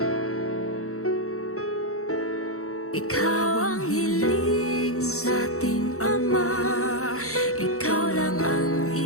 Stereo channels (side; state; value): right; late; 0.64 ms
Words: Ikaw ang hiling sa ating Ama, ikaw lang ang